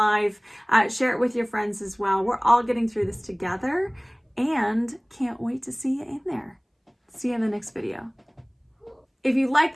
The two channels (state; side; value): identical; both; correlation 1.00